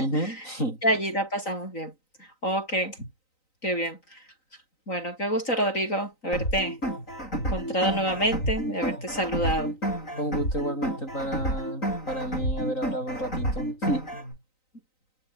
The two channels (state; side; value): late; right; 3.9 ms